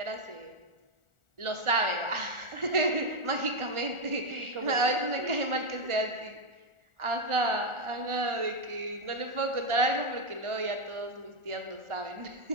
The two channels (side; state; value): left; late; 1.4 ms